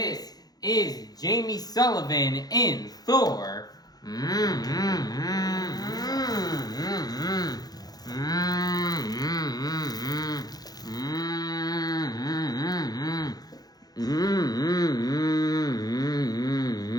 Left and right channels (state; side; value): late; right; 0.19 ms